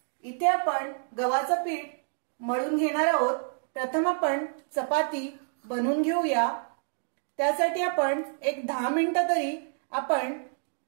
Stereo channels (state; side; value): silent; left; digital silence